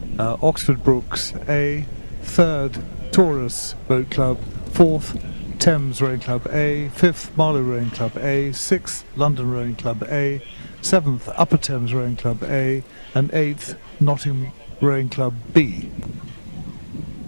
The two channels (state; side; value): inverted; both; correlation -1.00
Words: Oxford Brooks A. Third, Taurus Boat Club. Fourth, Thames Rowing Club A. Fifth, Marlow Rowing Club A. Sixth, London Rowing Club A. Seventh, Upper Thames Rowing Club A. And eighth, Nottingham Rowing Club B.